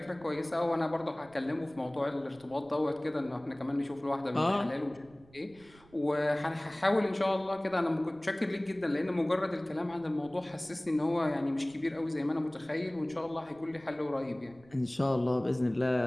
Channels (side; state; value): right; noise; rumble, 26 dB below the sound